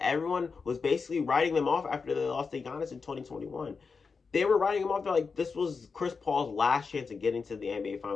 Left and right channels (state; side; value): quieter; right; 5.0 dB